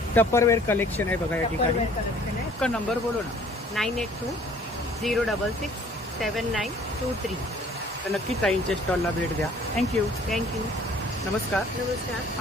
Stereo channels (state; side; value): normal; both; correlation 0.55